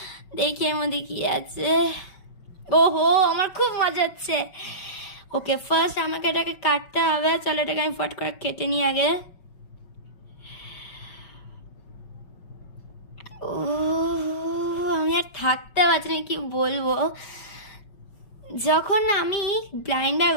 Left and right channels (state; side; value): late; right; 5.3 ms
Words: দেখি এর মধ্যে কি আছে। ওহো আমার খুব মজা হচ্ছে। ওকে ফার্স্ট আমাকে এটাকে কাটতে হবে। চলো এটাকে আমি ফট করে কেটে নিই আগে। ও আমি আর থাকতে পারছি না, কি বলবো। যখন আমি ব্লাইন্ড ব্যাগ